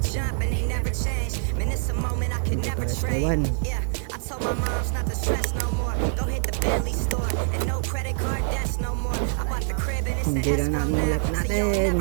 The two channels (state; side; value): silent; left; 62 dB below the other